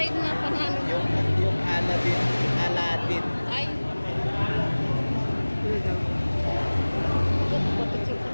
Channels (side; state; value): both; inverted; correlation -1.00